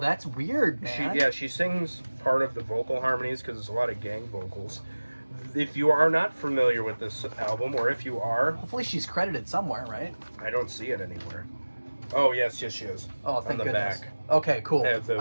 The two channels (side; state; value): both; inverted; correlation -1.00